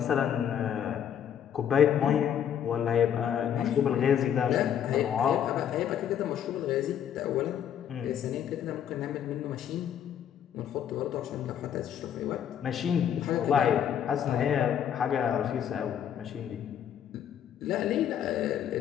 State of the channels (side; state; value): right; quieter; 9.2 dB